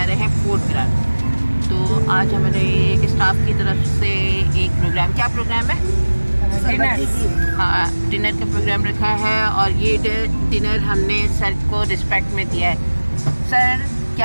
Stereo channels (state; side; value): inverted; both; correlation -1.00